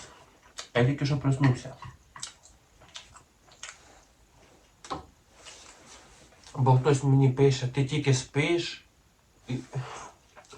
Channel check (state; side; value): identical; both; correlation 1.00